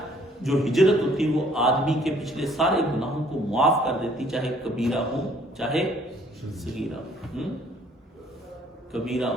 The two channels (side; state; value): both; normal; correlation 0.60